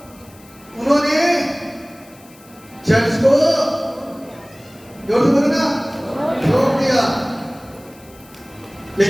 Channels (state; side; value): noise; left; hiss, 25 dB below the sound